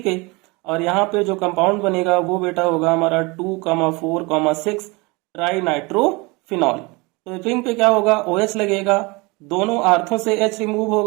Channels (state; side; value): quieter; left; 26.2 dB